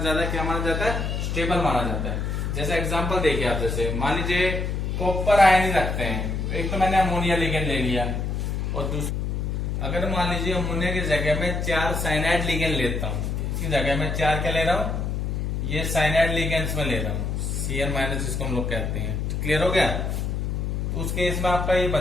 क्या माना जाता है? स्टेबल माना जाता है। जैसे एग्जांपल देखिए आप, जैसे मान लीजिए कॉपर आयन ही रखते हैं, तो एक तो मैंने अमोनिया लिगेंड ले लिया, और दूसरा अगर मान लीजिए अमोनिया की जगह में 4 साइनाइड लिगेंड लेता हूँ, इसकी जगह में 4 क्या ले रहा हूँ, ये साइनाइड लिगेंड्स में ले रहा हूँ, Cn- जिसको हम लोग कहते हैं। क्लियर हो गया? उस केस में आपका ये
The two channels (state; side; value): noise; left; hum, 1 dB below the sound